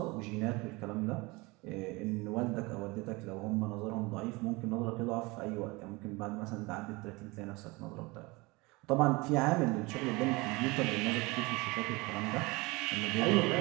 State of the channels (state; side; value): quieter; left; 24.3 dB